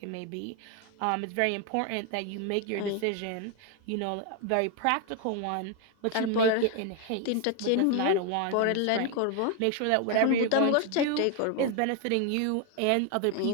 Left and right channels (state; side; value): different; both; correlation 0.01